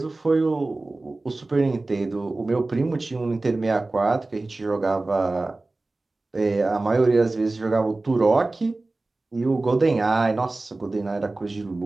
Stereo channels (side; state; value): left; quieter; 3.1 dB